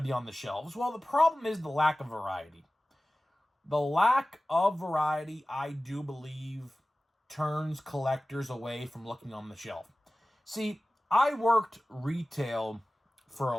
to be on the shelves. Well, the problem is the lack of variety. The lack of variety, I do believe, turns collectors away from looking on the shelf. See, I worked retail for a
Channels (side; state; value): both; normal; correlation 0.97